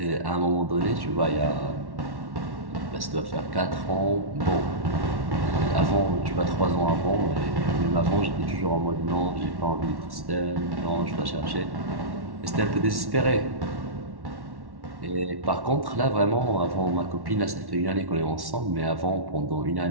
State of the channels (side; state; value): left; late; 1.1 ms